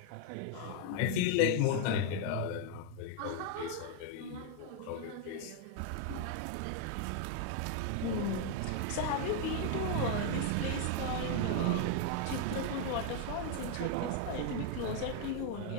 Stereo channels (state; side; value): different; both; correlation 0.00